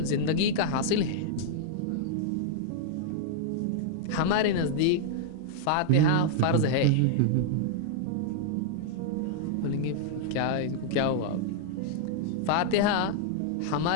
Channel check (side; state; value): both; different; correlation -0.01